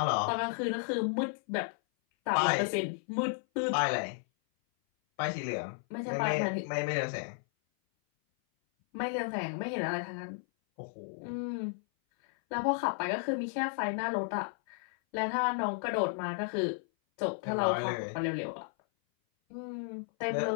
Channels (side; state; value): right; silent; 56 dB below the other